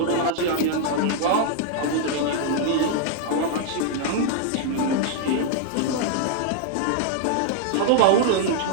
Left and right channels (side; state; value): both; different; correlation 0.00